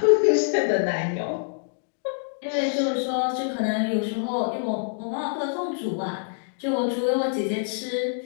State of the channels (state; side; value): silent; right; digital silence